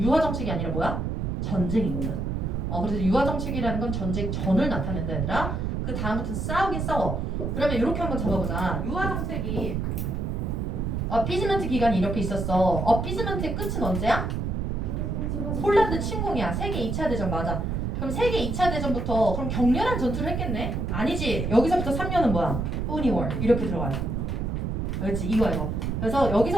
유화 정책이 아니라 뭐야? 전쟁이거든. 그래서 유화 정책이라는 건 전쟁 전을 나타낸다 얘들아. 그 다음부터 싸우긴 싸워. 그러면 이렇게 한번 잡아보자. 유화 정책이 어피즈먼트 기간이 이렇게 있었어. 어피즈먼트의 끝은 언제야? 폴란드 침공이야. 세계 2차 대전 맞아. 그럼 세계 2차 대전부터 그럼 격렬한 전투를 했겠네? 아니지. 여기서부터 3년은 뭐야? 포니 워 이렇게 들어가요. 알겠지? 이거. 그래서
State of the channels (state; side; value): noise; right; rumble, 1 dB below the sound